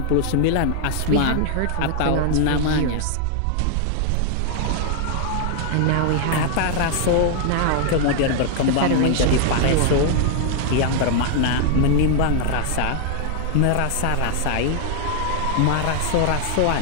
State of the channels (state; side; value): different; both; correlation 0.00